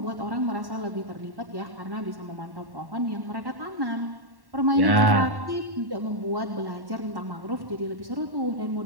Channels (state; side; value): late; left; 1.1 ms